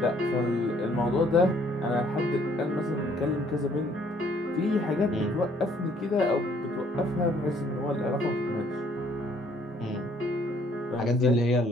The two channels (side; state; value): both; normal; correlation 0.63